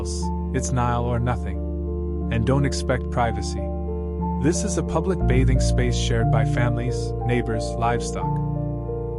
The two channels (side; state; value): both; identical; correlation 1.00